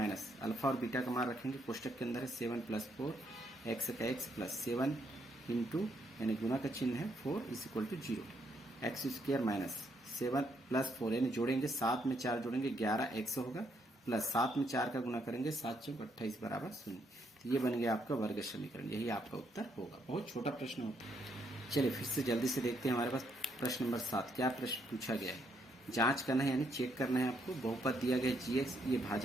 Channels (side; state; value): both; normal; correlation 0.74